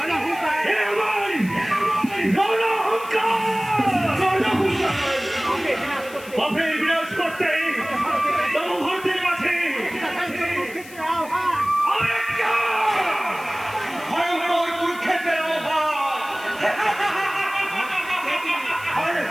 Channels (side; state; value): left; noise; hiss, 19 dB below the sound